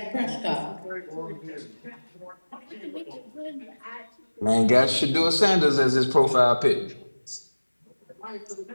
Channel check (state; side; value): inverted; both; correlation -1.00